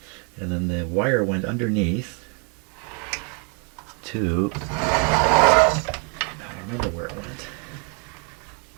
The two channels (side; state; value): left; quieter; 35.8 dB